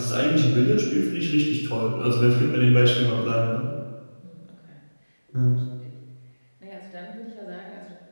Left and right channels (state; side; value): inverted; both; correlation -1.00